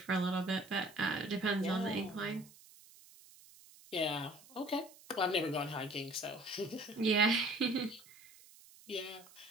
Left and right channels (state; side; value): noise; right; hiss, 22 dB below the sound